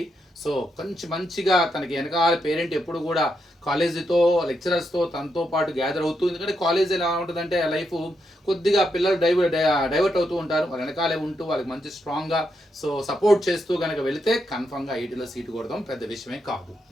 సో కొంచెం మంచిగా తనకి వెనకాల పేరెంట్ ఎప్పుడు కూడా కాలేజీతో, లెక్చరర్స్తో తనతో పాటు గ్యాదర్ అవుతూ, ఎందుకంటే కాలేజ్ ఎలా ఉంటుందంటే లైఫ్ కొద్దిగా పిల్లలు డైవర్ట్ అవుతూ ఉంటారు, వాళ్ళ వెనకాలే ఉంటూ వాళ్ళకి మంచి స్ట్రాంగ్గా సో సపోర్ట్ చేస్తూ కనుక వెళితే కన్ఫర్మ్గా ఐటీలో సీటు కొడదాం పెద్ద విషయమే కాదు,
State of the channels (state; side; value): normal; both; correlation 0.82